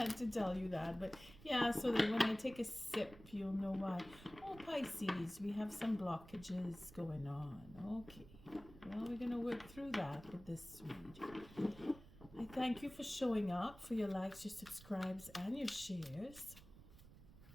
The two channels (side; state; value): right; noise; rumble, 19 dB below the sound